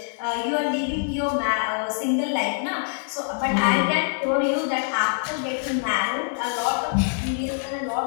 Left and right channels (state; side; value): silent; right; digital silence